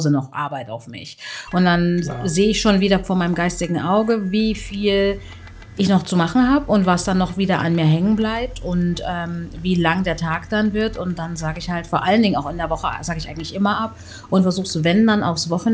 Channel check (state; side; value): identical; both; correlation 1.00